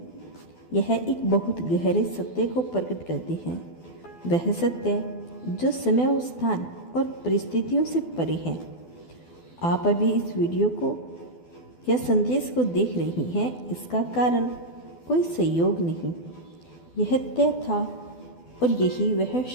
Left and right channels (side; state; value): right; late; 12 ms